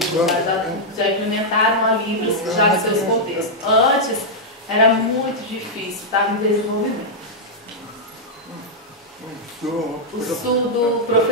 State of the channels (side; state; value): both; normal; correlation -0.06